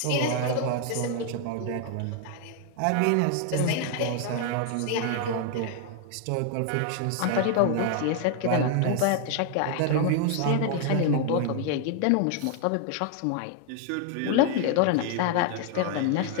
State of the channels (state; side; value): different; both; correlation 0.00